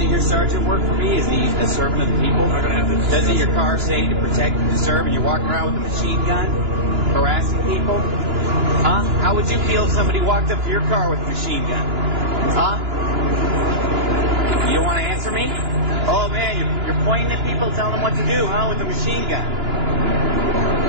your sergeant work for me? Is he a servant of the people? I'm not going to have this. Doesn't your car say to protect and to serve, and you're walking around with a machine gun, harassing people? Huh? How would you feel if somebody walked up to your car with a machine gun? Huh? You don't want to answer me? Oh man, you're pointing at people, telling them what to do, huh? With a machine gun.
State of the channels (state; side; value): late; left; 2.9 ms